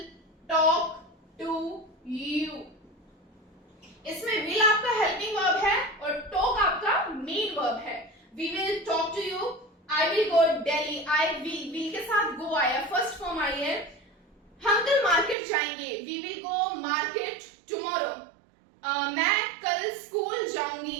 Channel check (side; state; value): left; drops out; at 15.4 s